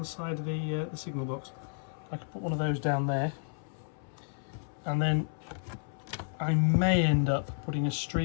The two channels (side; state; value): right; silent; 57 dB below the other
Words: side of the signal box. I could put one of those down there. And then I may end up putting a